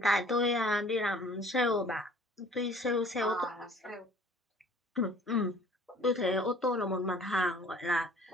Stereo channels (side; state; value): both; normal; correlation 0.52